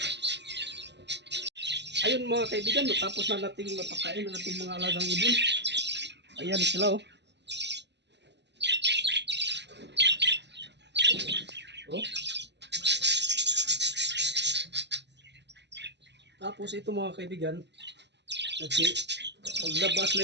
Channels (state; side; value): late; left; 0.50 ms